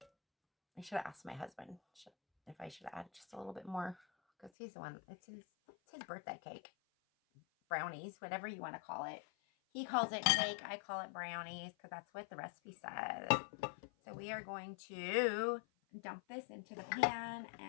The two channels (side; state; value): right; drops out; at 4.5 s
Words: I should have asked my husband if I should add just a little bit more, because he's the one, it's his birthday cake. Brownies, whatever you want to call it. He calls it cake. I call it brownies because that's what the recipe says. So we are going to dump this into the pan,